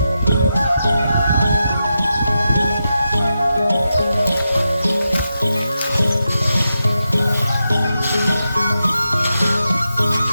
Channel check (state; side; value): inverted; both; correlation -0.88